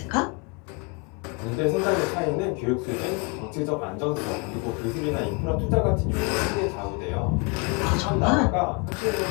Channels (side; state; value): right; quieter; 30.1 dB